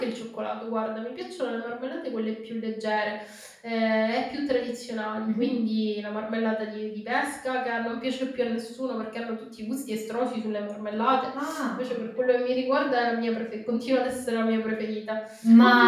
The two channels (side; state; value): both; identical; correlation 1.00